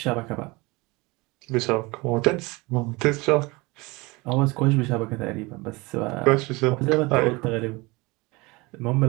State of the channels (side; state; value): left; quieter; 24.3 dB